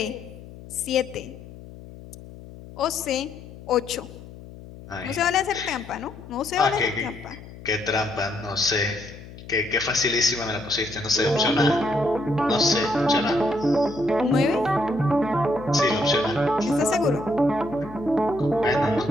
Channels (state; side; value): noise; left; hum, 16 dB below the sound